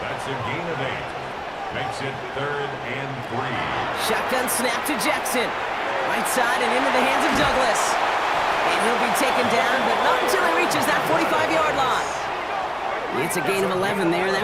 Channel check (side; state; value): both; identical; correlation 1.00